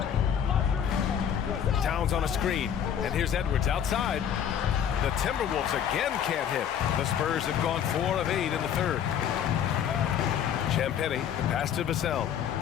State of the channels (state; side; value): quieter; right; 8.9 dB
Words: Towns on a screen. And here's Edwards outside. The Timberwolves again can't hit. The Spurs have gone 4 of 8 in the third. Champagny, the pass to Vassell.